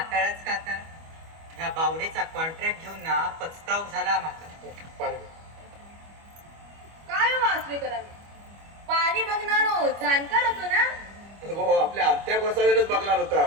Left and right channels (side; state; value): left; late; 25 ms